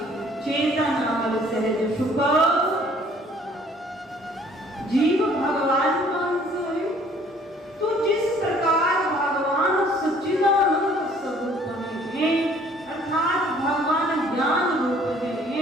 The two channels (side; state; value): both; normal; correlation 0.57